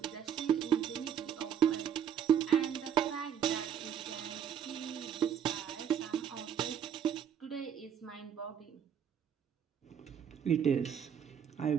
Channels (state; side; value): quieter; left; 8.5 dB